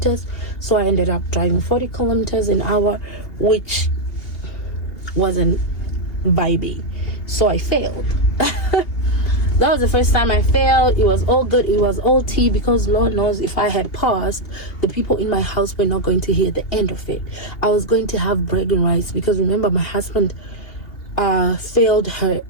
So I ended up driving 40 kilometers an hour, which wasn't vibey. So I failed. That was the first time I failed. It was all good. It was all tea, because Lord knows if I had passed, the people in my house were not going to hear the end of it. I was going to have bragging rights, because remember, my husband failed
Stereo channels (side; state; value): right; late; 2.8 ms